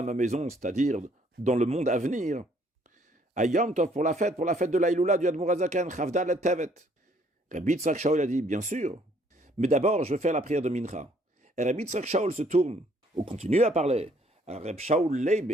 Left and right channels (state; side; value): normal; both; correlation 0.64